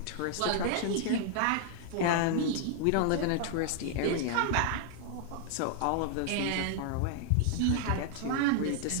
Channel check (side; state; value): both; different; correlation 0.00